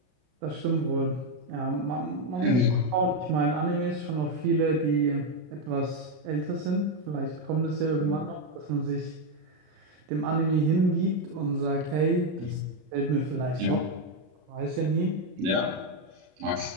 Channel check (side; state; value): left; late; 33 ms